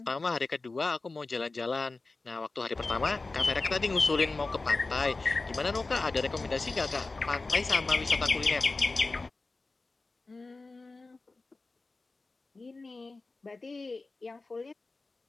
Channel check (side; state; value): right; quieter; 3.5 dB